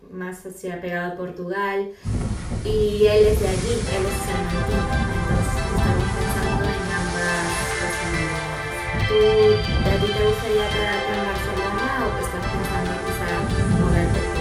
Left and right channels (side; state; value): both; identical; correlation 1.00